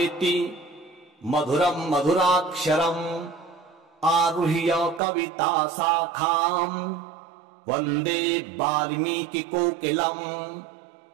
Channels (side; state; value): left; drops out; at 5.0 s